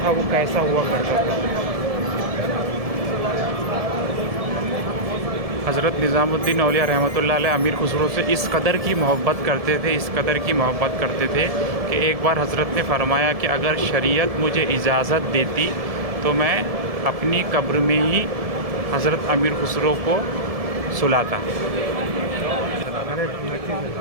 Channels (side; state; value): left; late; 1.7 ms